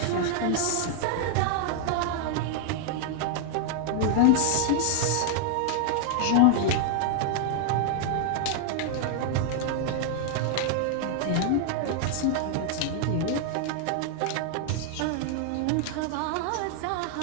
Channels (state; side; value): different; both; correlation 0.00